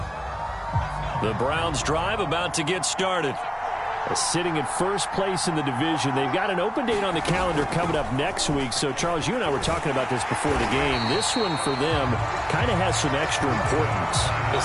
The Browns drive about to get started. Sitting in first place in the division. They've got an open date on the calendar coming up next week. So, Charles, you and I were talking about this before the game. This one for them kind of has some extra importance.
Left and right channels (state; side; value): identical; both; correlation 1.00